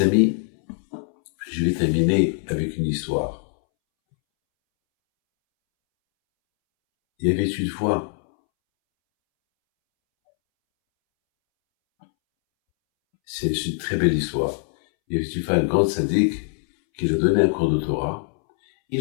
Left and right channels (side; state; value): right; silent; 64 dB below the other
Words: amis, je vais terminer avec une histoire. Il y avait une fois, c'est une très belle histoire, il y avait une fois un grand sadique qui lui a donné un cours de Torah.